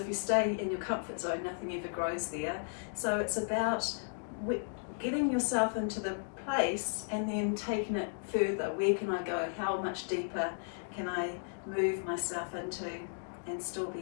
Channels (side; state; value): right; silent; digital silence